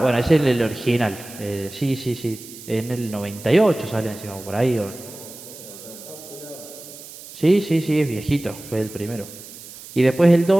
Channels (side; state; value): right; noise; hiss, 16 dB below the sound